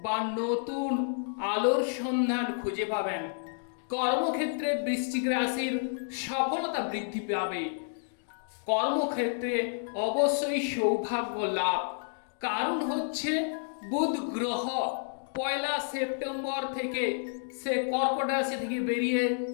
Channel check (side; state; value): right; silent; digital silence